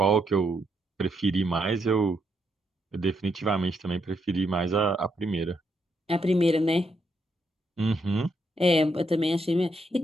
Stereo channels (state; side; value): normal; both; correlation 0.78